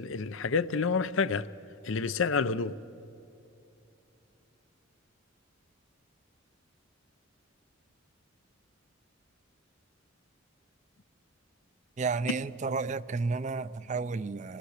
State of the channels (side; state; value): both; normal; correlation 0.12